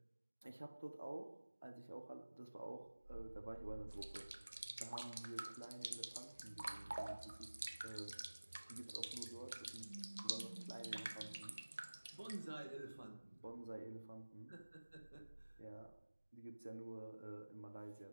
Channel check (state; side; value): inverted; both; correlation -1.00